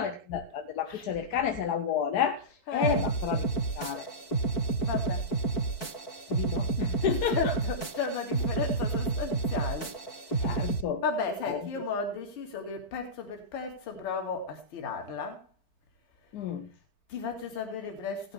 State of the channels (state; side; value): late; right; 4.6 ms